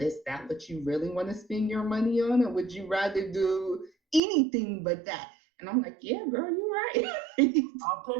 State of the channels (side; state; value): left; drops out; at 4.2 s